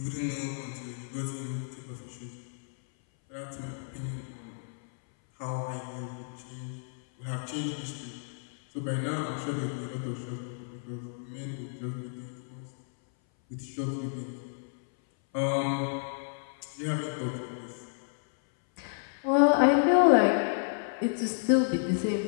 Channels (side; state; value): right; silent; 57 dB below the other